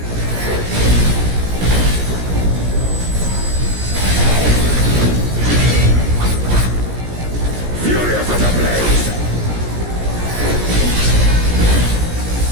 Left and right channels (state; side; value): late; left; 17 ms